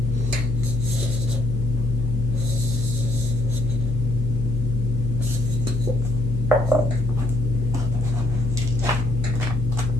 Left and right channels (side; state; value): left; noise; hum, 2 dB below the sound